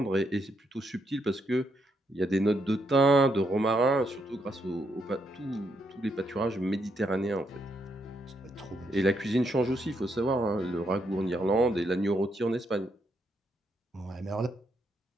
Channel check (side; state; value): both; normal; correlation 0.77